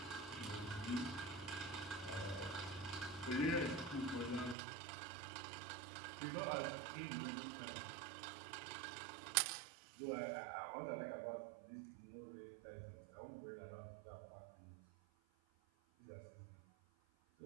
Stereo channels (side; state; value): left; drops out; at 4.5 s